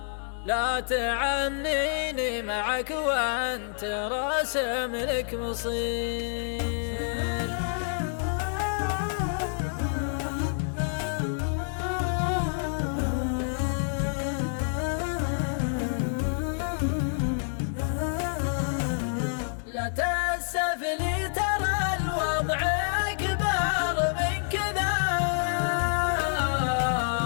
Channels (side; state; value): right; silent; digital silence